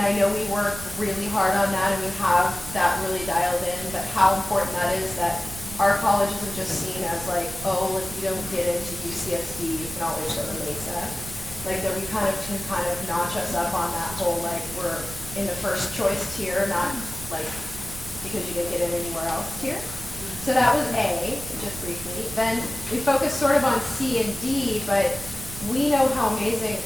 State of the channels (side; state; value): right; noise; rumble, 13 dB below the sound